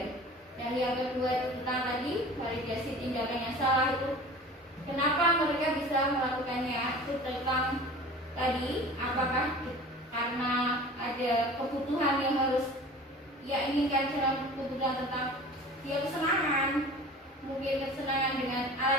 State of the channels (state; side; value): normal; both; correlation 0.41